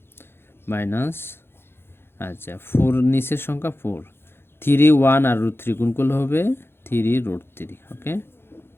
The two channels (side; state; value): right; late; 0.11 ms